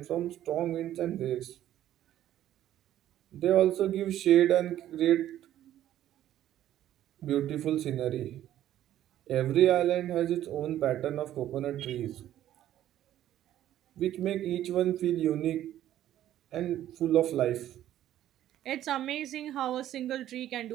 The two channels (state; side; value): quieter; left; 12.3 dB